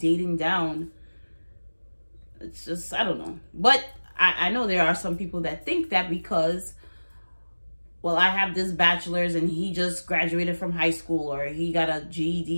down? It's just, I don't know. But I know there are some people that think that because, well, I have this bachelor's and he just graduated from high school or he got a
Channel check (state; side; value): inverted; both; correlation -1.00